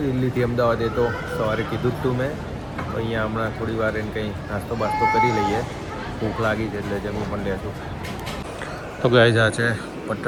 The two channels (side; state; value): both; identical; correlation 1.00